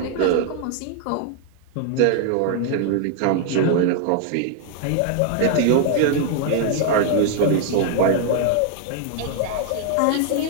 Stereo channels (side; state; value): both; different; correlation 0.00